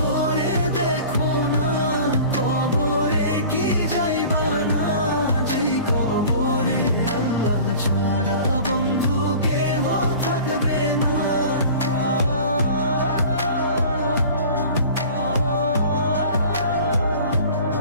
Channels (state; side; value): inverted; both; correlation -0.43